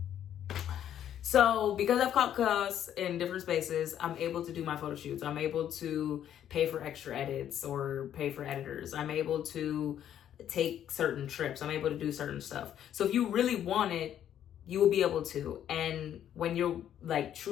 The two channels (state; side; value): quieter; right; 10.4 dB